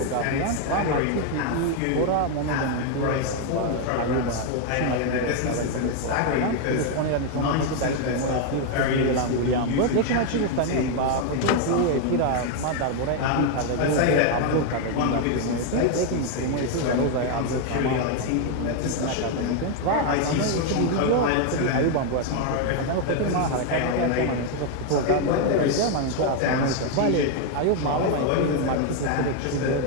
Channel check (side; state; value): both; different; correlation 0.01